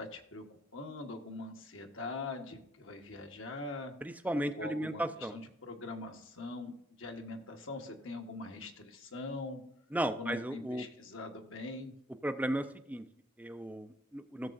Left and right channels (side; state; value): both; normal; correlation 0.65